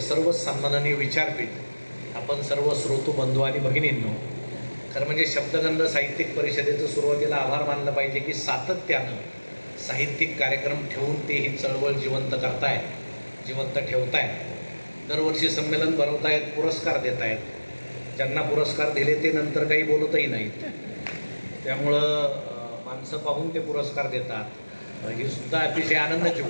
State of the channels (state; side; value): inverted; both; correlation -1.00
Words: सर्व सन्माननीय विचारपीठ, आपण सर्व श्रोतू बंधू आणि भगिनींनो, खरं म्हणजे शब्दगंध साहित्यिक परिषदेचं सुरुवातीला आभार मानलं पाहिजे की सातत्यानं साहित्यिक कार्यक्रम ठेवून ते ही चळवळ जिवंत करताय, जिवंत ठेवताय, दरवर्षी संमेलन भरवतायत, पुरस्कार देत आहेत. ज्यांना पुरस्कार दिले ते नंतर काही बोलतही नाहीत, त्यामुळं माणसं पाहून ते पुरस्कार देतात. ही सुद्धा अतिशय आनंदाची